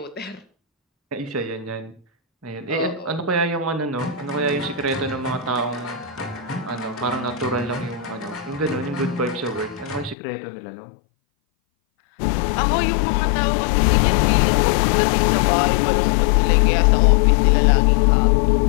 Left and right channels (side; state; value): right; drops out; at 10.2 s